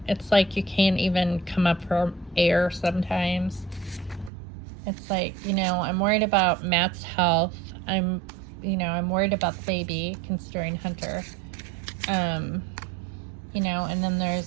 it's like you can't even come up for air sometimes. It's like, you know, I'm worried about Matt's health. I'm worried about the baby, considering Hunter. You know, and then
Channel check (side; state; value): left; drops out; at 4.3 s